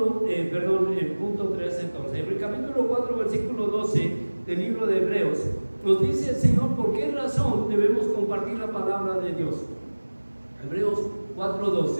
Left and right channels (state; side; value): inverted; both; correlation -1.00